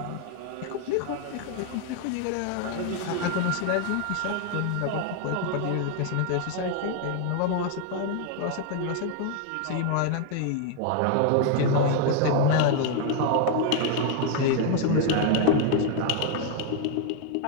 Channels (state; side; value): different; both; correlation 0.00